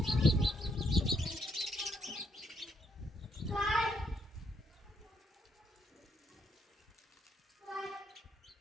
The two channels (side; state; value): both; normal; correlation 0.74